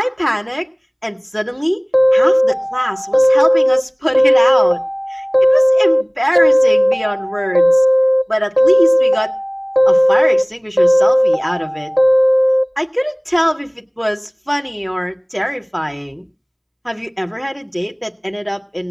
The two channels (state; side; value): identical; both; correlation 1.00